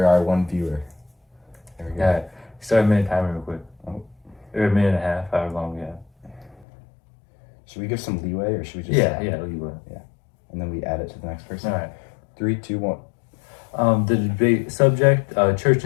our one viewer. There we go. Yeah. Start a minute timer real quick. Oh. Or a minute and a half, however long we have. Should we give some leeway or should we just leeway. and then we add it to the next person? All right. 3, 2, 1. The debate subject: church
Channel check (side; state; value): right; drops out; at 6.7 s